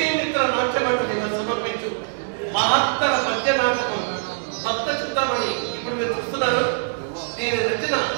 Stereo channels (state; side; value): silent; left; digital silence